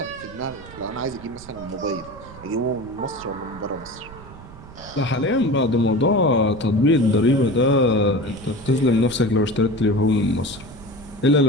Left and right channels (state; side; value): noise; right; rumble, 18 dB below the sound